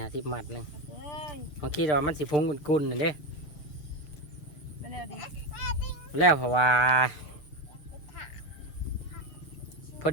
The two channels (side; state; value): right; late; 6.7 ms